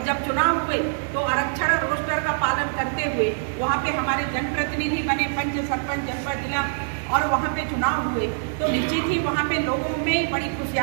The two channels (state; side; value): silent; left; digital silence